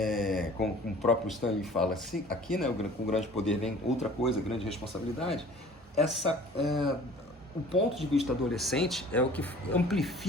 Como o próprio Stanley fala assim, aqui, né, com grande poder vem outra coisa, grande responsabilidade. O ponto de vista adolescente é o que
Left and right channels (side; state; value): both; normal; correlation 0.48